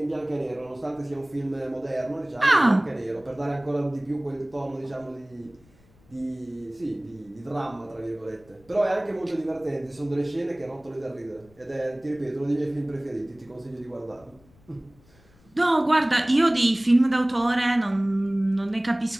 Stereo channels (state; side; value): noise; left; rumble, 29 dB below the sound